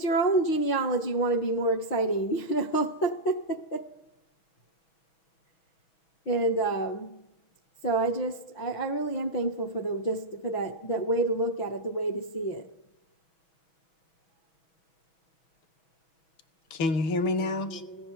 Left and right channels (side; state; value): right; late; 6.2 ms